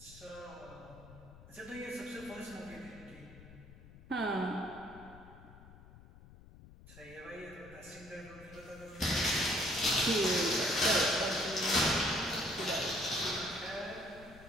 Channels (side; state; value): left; noise; rumble, 19 dB below the sound